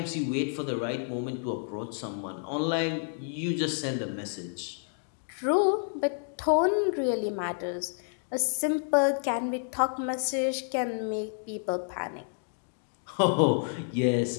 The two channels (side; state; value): right; silent; 58 dB below the other